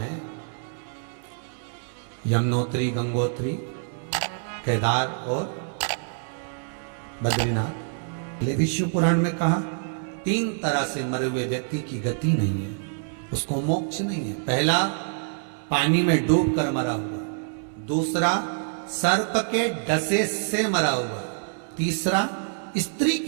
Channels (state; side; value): silent; left; digital silence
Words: यमुनोत्री, गंगोत्री, केदार और बद्रीनाथ, विष्णु पुराण में कहा 3 तरह से मरे हुए व्यक्ति की गति नहीं है, उसको मोक्ष नहीं है। पहला पानी में डूब कर मरा हुआ, दूसरा सर्प के डसे से मरा हुआ, तीसरा स्त्री